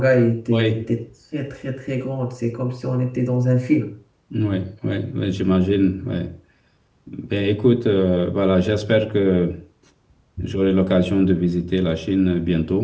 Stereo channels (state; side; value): identical; both; correlation 1.00